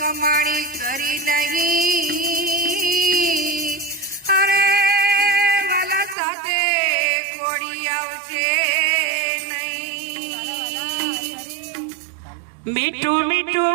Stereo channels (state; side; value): drops out; left; at 6.2 s